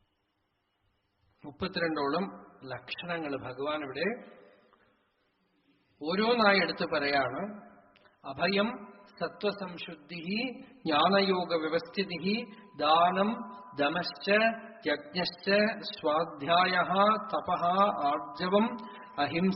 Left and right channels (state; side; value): identical; both; correlation 1.00